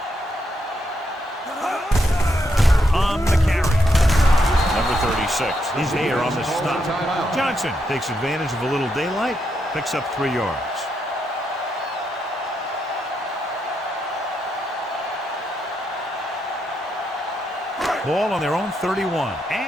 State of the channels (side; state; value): both; normal; correlation 0.80